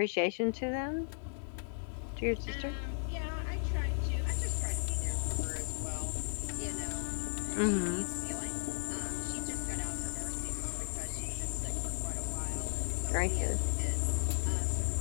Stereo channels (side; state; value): right; silent; digital silence